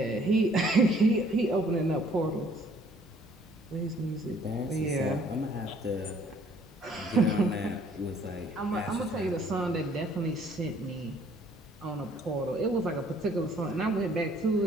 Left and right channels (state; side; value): normal; both; correlation 0.60